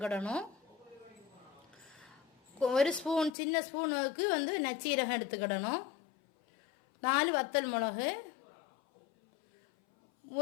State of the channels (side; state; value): right; drops out; at 3.3 s